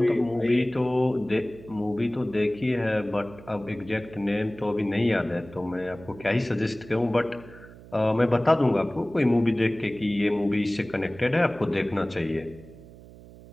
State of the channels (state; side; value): noise; right; hum, 19 dB below the sound